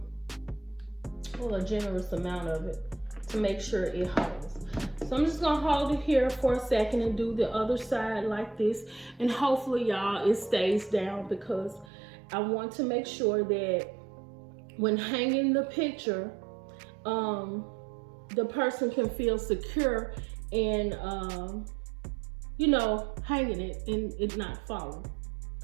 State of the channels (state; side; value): drops out; left; at 11.9 s